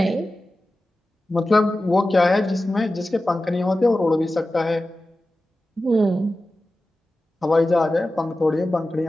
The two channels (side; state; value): both; normal; correlation 0.94